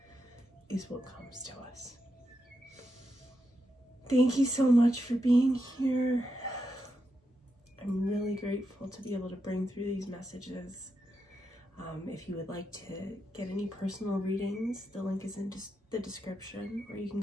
is what comes to us. Thank you so much for being here. I'm really grateful to be able to bring through these messages. If you would like to get any personal readings, the link is in the description, or you can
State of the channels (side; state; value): both; normal; correlation 0.85